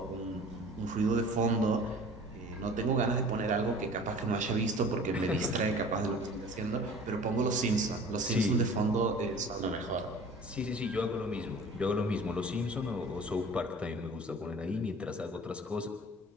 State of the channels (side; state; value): both; normal; correlation 0.44